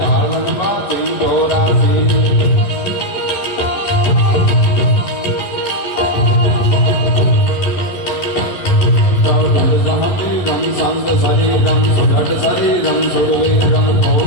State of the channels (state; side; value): late; right; 11 ms